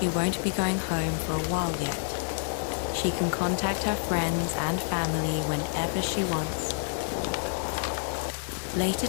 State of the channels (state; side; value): silent; right; digital silence